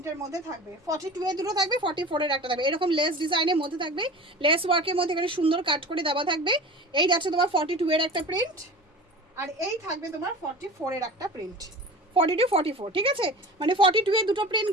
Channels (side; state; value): both; normal; correlation 0.36